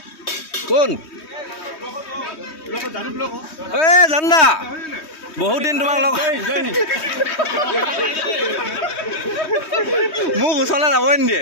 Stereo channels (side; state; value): right; late; 3.2 ms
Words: কোন এই জান্দা বহুত দিন তোমাক লগ মোক ওচৰলৈ যাবই